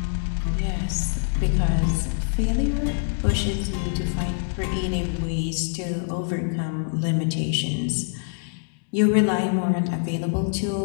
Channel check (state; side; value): silent; right; digital silence